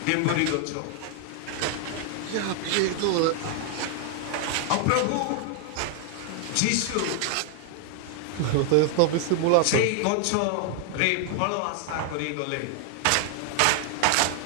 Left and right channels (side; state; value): both; different; correlation 0.00